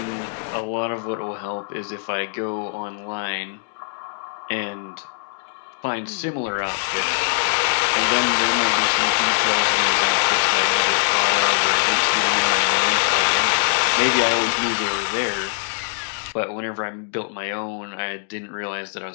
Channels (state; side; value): silent; right; digital silence